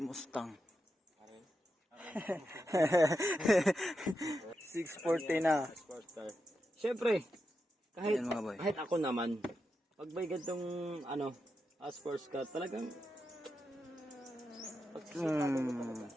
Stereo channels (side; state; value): both; normal; correlation 0.87